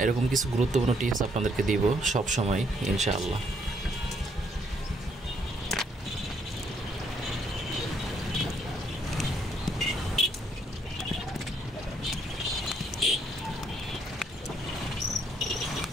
এরকম কিছু গুরুত্বপূর্ণ টিপস আপনাদেরকে দিব সব সময় ইনশাআল্লাহ।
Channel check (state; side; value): normal; both; correlation 0.71